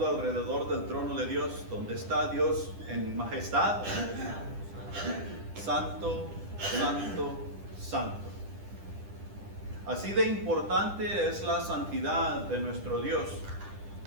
alrededor del trono de Dios, donde está Dios en majestad? Santo, santo, santo. Así de importante es la santidad de nuestro Dios,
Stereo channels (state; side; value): late; left; 10 ms